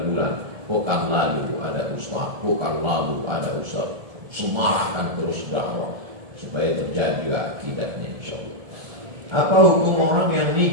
Pekan lalu ada ustaz, pekan lalu ada ustaz. Semarahkan terus dakwah supaya terjadi juga akidahnya, insya Allah. Apa hukum orang yang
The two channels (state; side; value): late; left; 1.7 ms